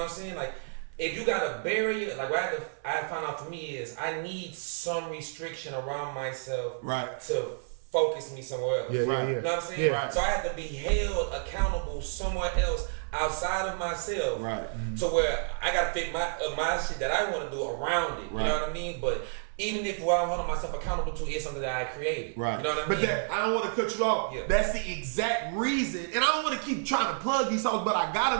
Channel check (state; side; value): silent; left; 58 dB below the other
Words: what I'm saying? Like, if you got a barrier, like what I found out for me is I need some restriction around myself to focus me somewhere else. Yeah. You know what I'm saying? Yeah. So I have to be held accountable somewhere else outside of myself. Right. To where I gotta fit my shit that I want to do around it. You know what I mean? But even if what I'm holding myself accountable to is something that I created. Right. You know what I mean? But I don't want to cut you off. Yeah. That's the exact reason. And I don't want to keep trying to plug these songs, but I got